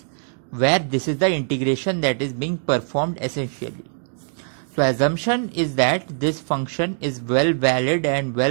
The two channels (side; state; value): left; silent; digital silence